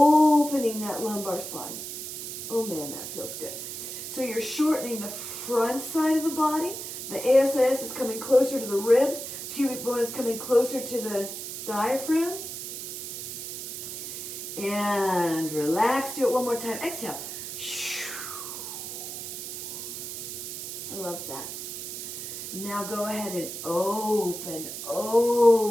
that lumbar spine. Oh man, that feels good. So you're shortening the front side of the body. The ASIS is coming closer to the ribs. Pubic bone is coming closer to the diaphragm. And relax. Do it one more time. Exhale. I love that. Now go ahead and open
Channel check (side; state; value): right; noise; hiss, 7 dB below the sound